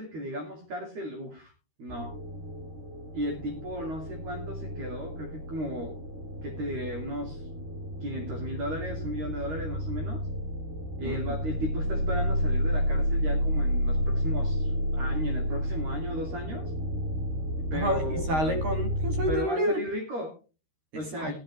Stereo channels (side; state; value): left; late; 13 ms